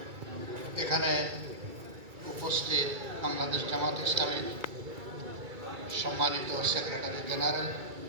এখানে উপস্থিত বাংলাদেশ জামাত ইসলামীর সম্মানিত সেক্রেটারি জেনারেল,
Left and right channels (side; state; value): left; late; 2.3 ms